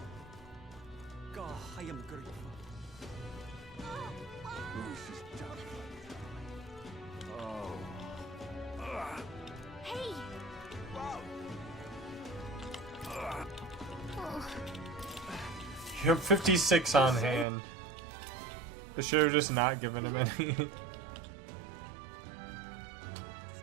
am grateful. Luis is done. Oh. Hey! Wow. Oh. You have 56 on hand. They should have just not given him any.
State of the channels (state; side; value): drops out; left; at 17.4 s